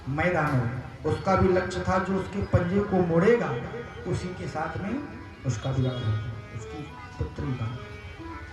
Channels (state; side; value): identical; both; correlation 1.00